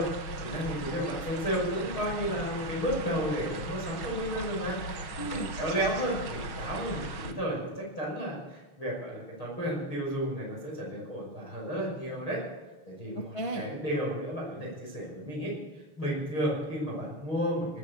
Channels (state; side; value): late; right; 6.3 ms